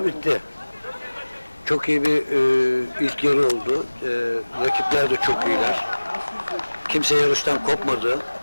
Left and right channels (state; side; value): inverted; both; correlation -1.00